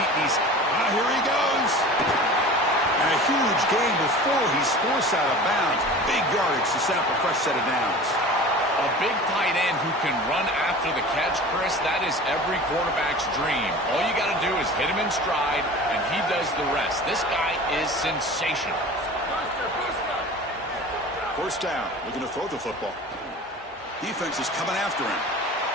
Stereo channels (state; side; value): normal; both; correlation 0.38